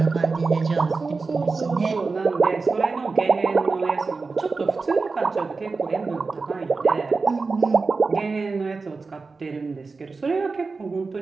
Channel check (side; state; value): left; quieter; 4.2 dB